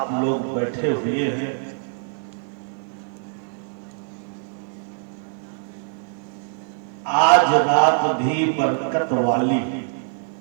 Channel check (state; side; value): silent; left; 57 dB below the other